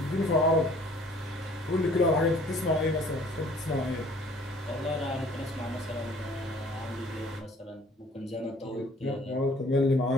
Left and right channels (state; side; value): normal; both; correlation 0.55